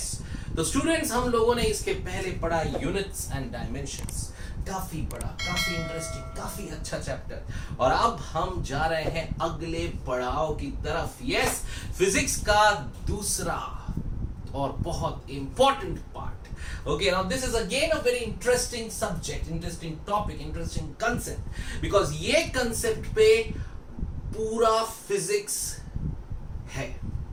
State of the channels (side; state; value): both; identical; correlation 1.00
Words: तो students हम लोगों ने इसके पहले पढ़ा units and dimensions, काफी पढ़ा, काफी इंटरेस्टिंग, काफी अच्छा चैप्टर और अब हम जा रहे हैं अगले पड़ाव की तरफ. यस, फिजिक्स का दूसरा और बहुत important part. Okay, now this is again a very interesting subject, interesting topic, interesting concept because ये concept पे पूरा physics है.